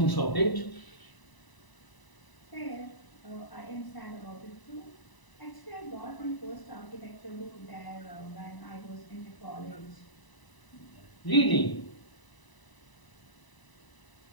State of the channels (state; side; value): late; right; 1.0 ms